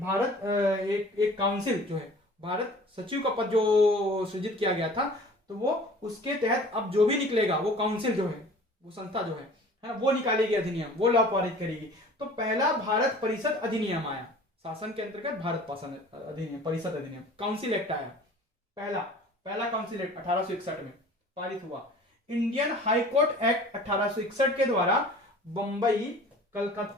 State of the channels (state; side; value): normal; both; correlation 0.46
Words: एक काउंसिल जो है, भारत सचिव का पद जो सृजित किया गया था, तो वो उसके तहत अब जो भी निकलेगा वो काउंसिल जो है, वो संस्था जो है वो निकालेगी अधिनियम, वो लॉ पारित करेगी। तो पहला भारत परिषद अधिनियम आया, शासन के अंतर्गत भारत शासन अधिनियम, परिषद अधिनियम, काउंसिल एक्ट आया। पहला काउंसिल एक्ट 1861 में पारित हुआ। इंडियन हाई कोर्ट एक्ट 1861 के द्वारा बंबई,